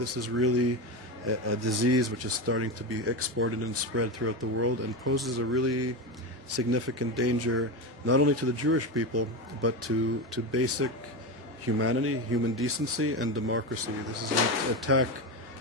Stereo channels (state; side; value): normal; both; correlation 0.18